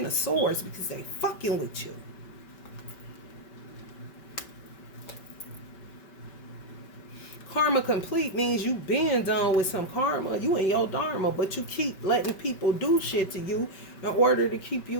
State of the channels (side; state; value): right; late; 5.2 ms